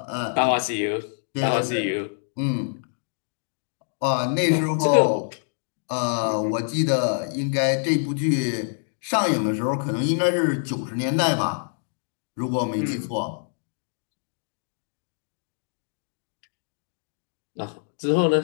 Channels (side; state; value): right; silent; digital silence